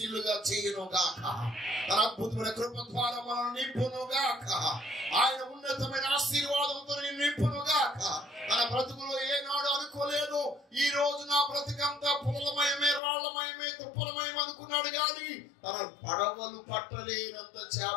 చేయను గాక. తన అద్భుతమైన కృప ద్వారా మనల్ని నింపును గాక. ఆయన ఉన్నతమైన ఆశీర్వాదంతో నింపును గాక. తన బ్రతుకులో ఏనాడు అనుకోలేదు ఈ రోజు నా బ్రతుకంతా పులమయమే, రాళ్లమయమే, తుప్పలమయం అనుకున్నాడు గాని తన పడవలు పట్టలేనంత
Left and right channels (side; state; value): right; drops out; at 13.0 s